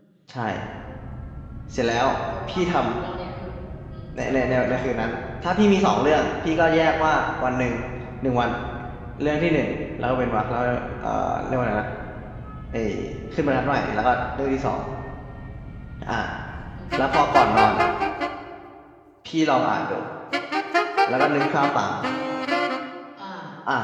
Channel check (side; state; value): both; identical; correlation 1.00